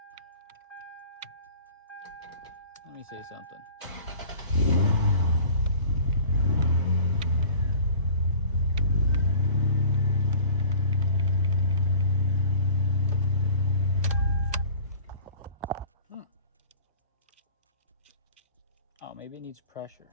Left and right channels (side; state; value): both; inverted; correlation -0.43